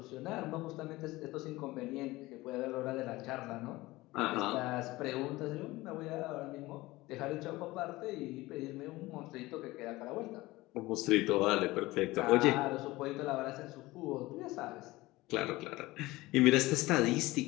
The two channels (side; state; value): right; quieter; 19.5 dB